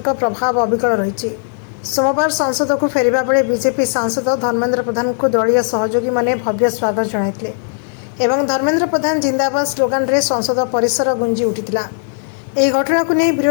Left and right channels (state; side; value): silent; right; digital silence